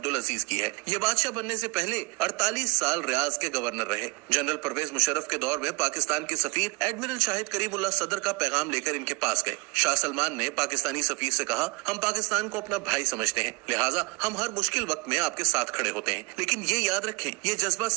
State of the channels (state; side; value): quieter; left; 26.5 dB